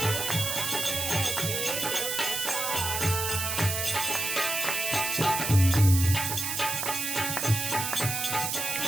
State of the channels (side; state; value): right; noise; hiss, 2 dB below the sound